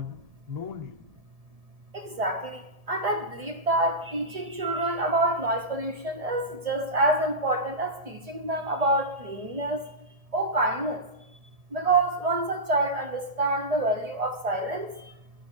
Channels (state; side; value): late; left; 1.7 ms